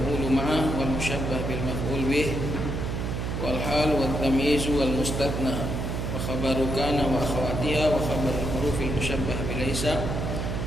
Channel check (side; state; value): right; noise; hum, 2 dB below the sound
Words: ma'ah wal mushabbah bil maf'ul bih wal hal wal tamyiz wal mustathna wa khabaru kana wa akhawatiha wa khabar al-huruf al-mushabbah bi laysa